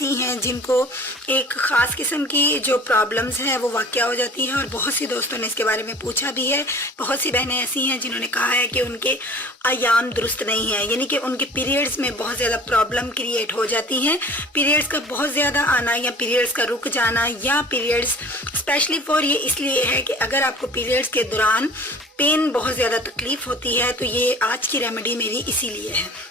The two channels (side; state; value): both; normal; correlation 0.45